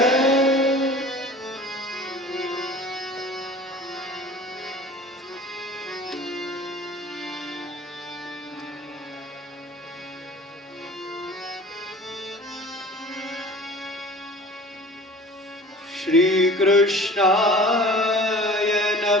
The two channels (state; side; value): normal; both; correlation 0.43